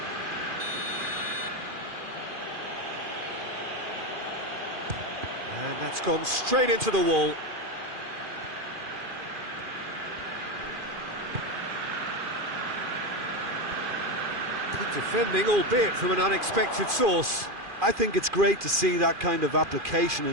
And that's gone straight into the wall. Good defending, albeit from an unexpected source. I think it's great to see that kind of application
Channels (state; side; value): late; left; 2.4 ms